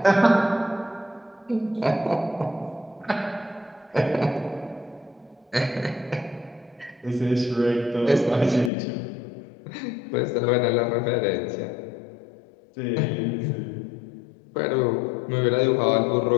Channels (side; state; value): right; drops out; at 8.7 s